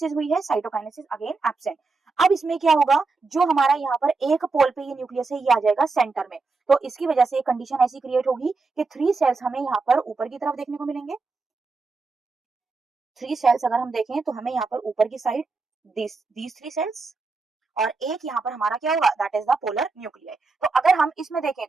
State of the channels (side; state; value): left; quieter; 4.1 dB